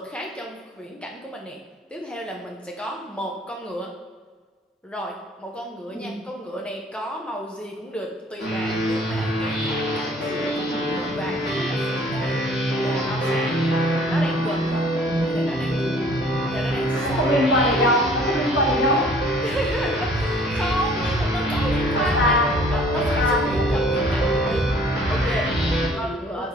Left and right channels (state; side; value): normal; both; correlation 0.55